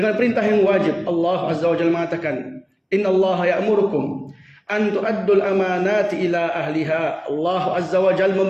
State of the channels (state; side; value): identical; both; correlation 1.00